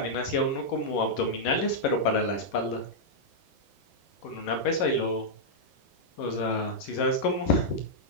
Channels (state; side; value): late; right; 11 ms